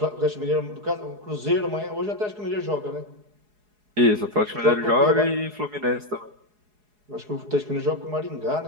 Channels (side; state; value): left; late; 4.8 ms